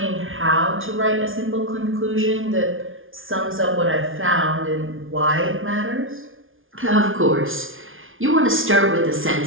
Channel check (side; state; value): left; late; 0.58 ms